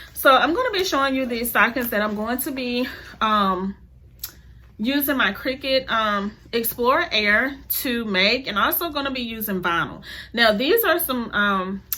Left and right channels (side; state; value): both; identical; correlation 1.00